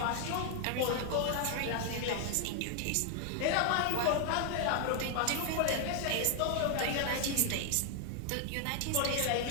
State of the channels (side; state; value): both; different; correlation 0.00